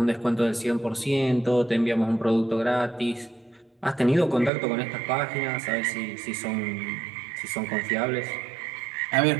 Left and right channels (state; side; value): drops out; left; at 4.5 s